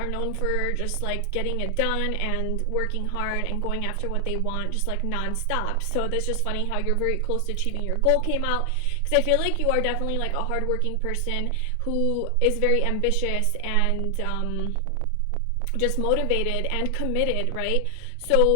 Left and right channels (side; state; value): both; different; correlation 0.00